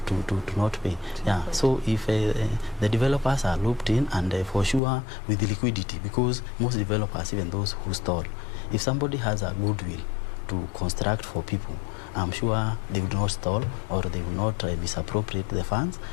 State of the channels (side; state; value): right; drops out; at 4.8 s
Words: not pay. Yeah. So if the developers are looped in, and for sure with the liquidity, because most developers, even those who stall, if somebody has a goodwill to construct for people, I'm sure they would not stall, or they will not misappropriate the funds